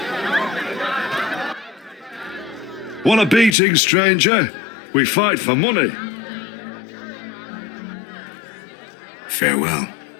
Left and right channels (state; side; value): drops out; right; at 3.6 s